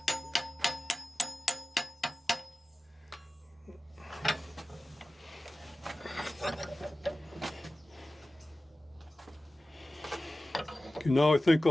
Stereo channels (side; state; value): both; normal; correlation 0.96